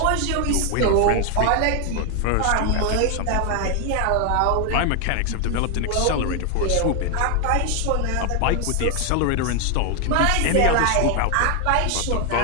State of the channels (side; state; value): both; different; correlation 0.00